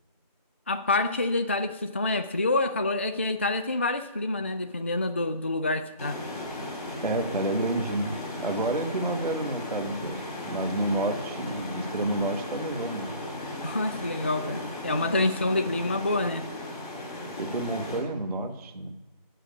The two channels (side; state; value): both; inverted; correlation -0.49